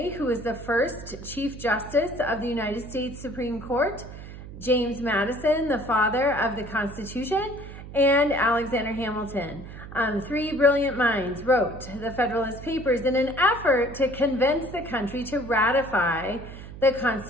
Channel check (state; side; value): noise; right; hum, 13 dB below the sound